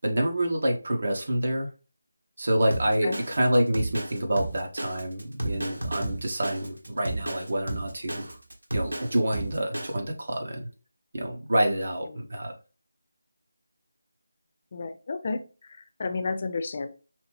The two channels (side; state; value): both; inverted; correlation -0.94